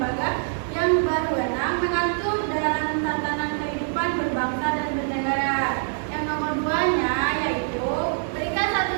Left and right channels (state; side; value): silent; left; digital silence